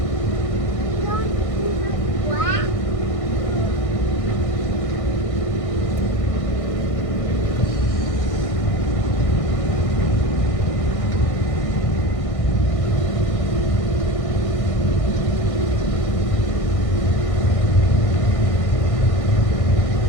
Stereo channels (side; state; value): right; late; 1.6 ms